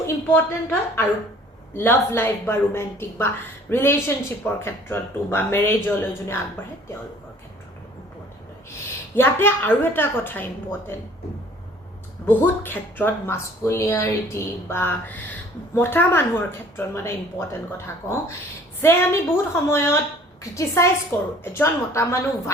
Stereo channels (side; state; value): both; normal; correlation 0.53